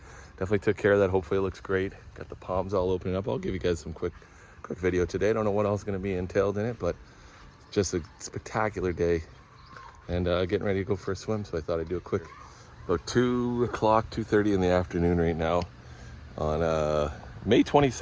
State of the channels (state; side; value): identical; both; correlation 1.00